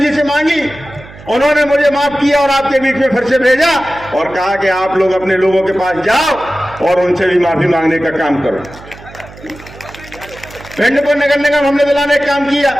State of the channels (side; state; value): right; noise; hum, 19 dB below the sound